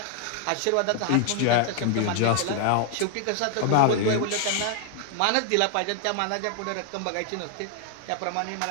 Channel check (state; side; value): different; both; correlation 0.00